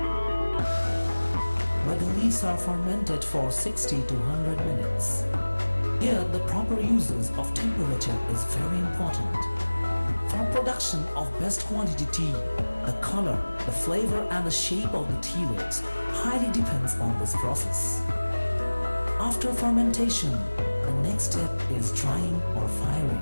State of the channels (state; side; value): inverted; both; correlation -1.00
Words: where the leaves are fermented for 60 to 100 minutes. Here, the proper uses of temperature is very important. For production of best quality tea, the color, the flavor and the shape of the tea leaves highly depends on this process. After fermentation, the next step is drying or